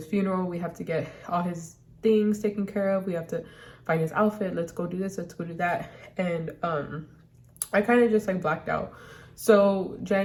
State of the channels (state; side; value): identical; both; correlation 1.00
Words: funeral, we have to get all his things taken care of, we have to find his outfit, let's go do this, let's go do that. And I kind of just like blacked out. So